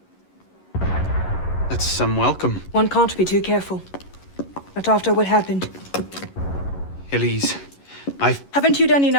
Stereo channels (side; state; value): right; late; 11 ms